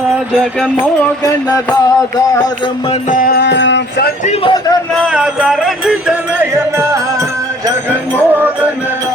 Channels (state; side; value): normal; both; correlation 0.55